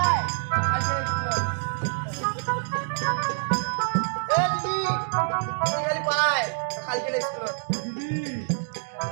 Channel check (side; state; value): left; silent; digital silence